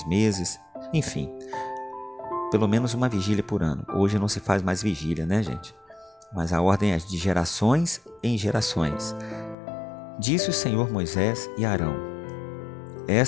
meses, enfim, pelo menos uma vigília por ano. Hoje não se faz mais vigília, né, gente? Mas a ordem é de gerações em gerações. Disse o Senhor Moisés e Arão:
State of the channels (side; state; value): right; drops out; at 9.6 s